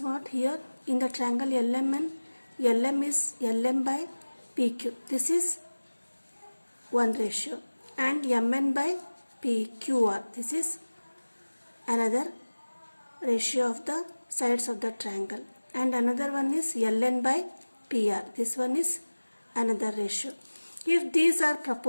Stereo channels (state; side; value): inverted; both; correlation -1.00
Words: Here in the triangle LMN, LM is LM by PQ. This is one ratio. And MN by PQR. This is another ratio of the sides of the triangle. And another one is LN by PR. This one is another ratio. If these are